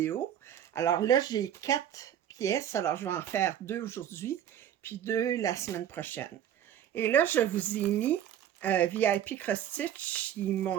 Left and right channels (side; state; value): left; quieter; 10.4 dB